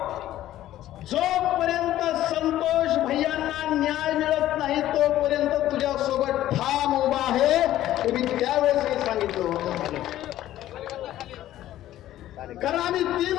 जोपर्यंत संतोष भैयांना न्याय मिळत नाही तोपर्यंत तुझ्या सोबत ठाम उभा आहे हे मी त्यावेळेस सांगितलं होतं। कारण आम्ही 3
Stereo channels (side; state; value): right; quieter; 13.5 dB